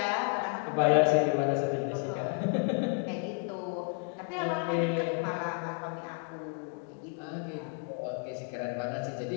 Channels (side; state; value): right; quieter; 37.2 dB